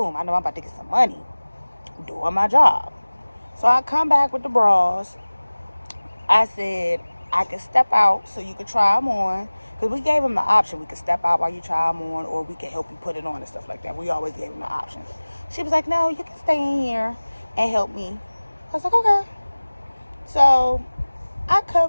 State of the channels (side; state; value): both; inverted; correlation -1.00